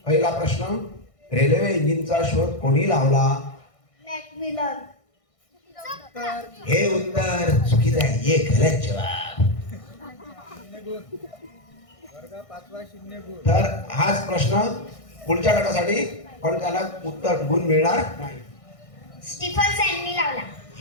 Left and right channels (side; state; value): right; late; 1.6 ms